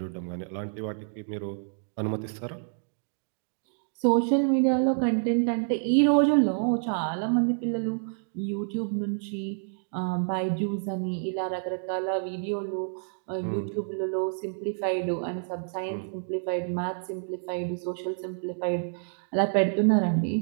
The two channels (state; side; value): silent; left; digital silence